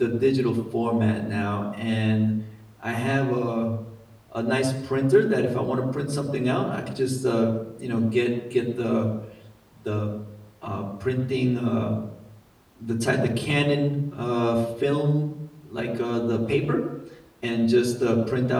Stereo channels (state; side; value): identical; both; correlation 1.00